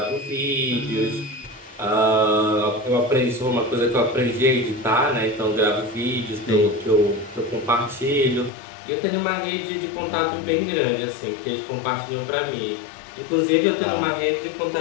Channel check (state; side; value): drops out; right; at 8.5 s